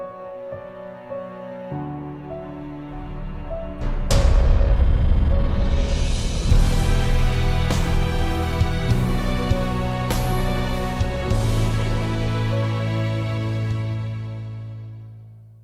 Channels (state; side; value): identical; both; correlation 1.00